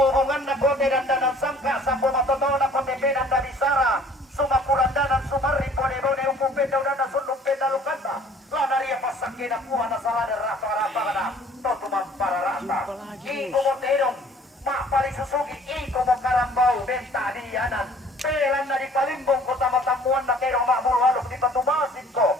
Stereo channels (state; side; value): normal; both; correlation 0.53